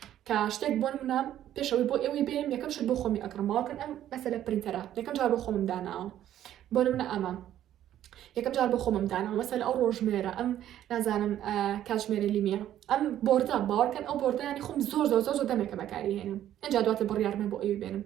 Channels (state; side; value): quieter; left; 11.8 dB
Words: کە شتێک بۆ منە پێشەوەی بۆ ئێوەی بێنم یەکەم شت بۆ خۆمی ئەکڕم باوەڕکەن ئەم مەسەلە پرینتەرە یەکەم جار بۆ خۆمم داناوە بۆ منە ئەمە یەکەم جار بۆ خۆمم داناوە مەسەلە ئەو ڕۆژمێرە ئەم نازانم کاتژمێرە لیمیە ئەم بۆردە باوەڕکەن ئەو بۆردە ینی خۆم زۆر دەمێکە بەکاری هێنم ئەجا دواتر بڕیارمە بۆ ئێوەی بێنم